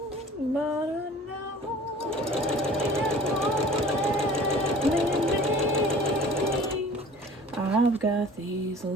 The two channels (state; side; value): normal; both; correlation 0.46